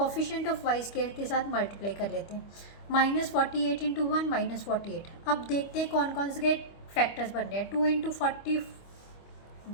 ऑफ वाई स्क्वायर के साथ मल्टीप्लाई कर लेते हैं, -48 इंटू 1 -48। अब देखते हैं कौन कौन से फैक्टर्स बन रहे हैं, 2 into 24,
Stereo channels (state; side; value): late; right; 25 ms